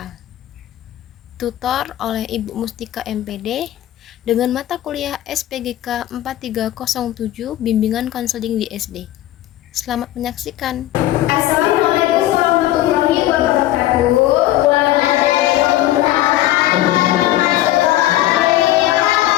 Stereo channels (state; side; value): quieter; right; 14.7 dB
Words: tutor oleh Ibu Mustika MPD dengan mata kuliah SPGK 4307 bimbingan konseling di SD. Selamat menyaksikan. Assalamualaikum warahmatullahi wabarakatuh.